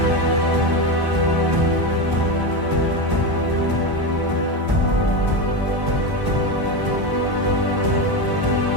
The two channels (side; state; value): left; late; 1.1 ms